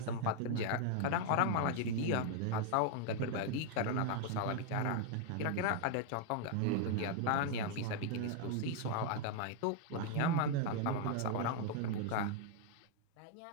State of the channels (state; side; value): different; both; correlation 0.00